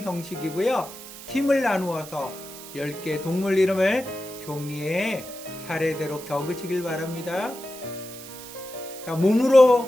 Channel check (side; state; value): right; noise; hiss, 14 dB below the sound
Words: 팀을 나누어서 10개 동물 이름을 종이에 차례대로 적으시길 바랍니다. 자,